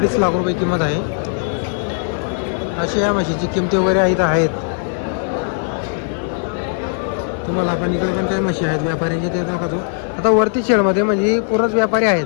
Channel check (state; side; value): silent; right; 58 dB below the other